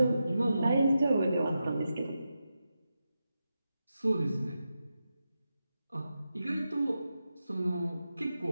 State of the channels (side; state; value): both; inverted; correlation -0.89